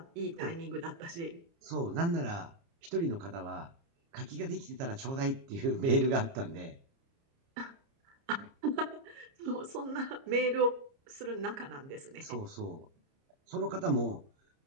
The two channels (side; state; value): left; late; 30 ms